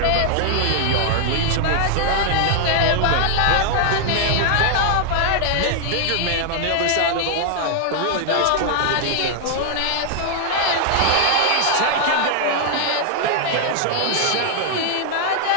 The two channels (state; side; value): different; both; correlation 0.00